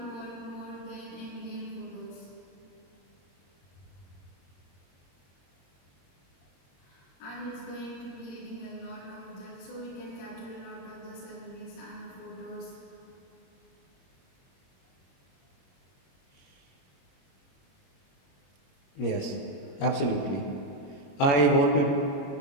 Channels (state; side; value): late; right; 21 ms